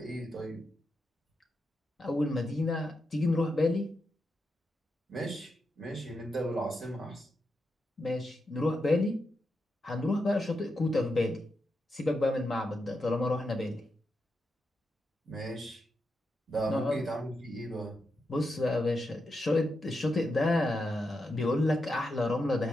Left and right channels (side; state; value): both; normal; correlation 0.86